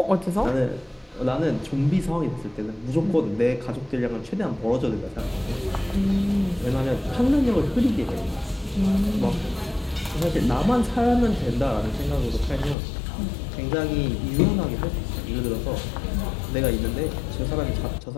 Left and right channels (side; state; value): right; drops out; at 12.8 s